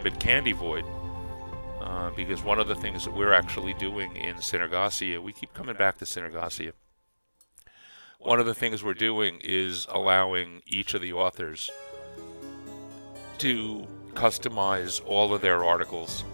Candy Void. Because one of the things that we're actually doing in Synergasia, we keep coming back to Synergasia. One of the things we're doing is allowing each of the authors to customize all of their articles,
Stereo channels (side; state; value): both; inverted; correlation -1.00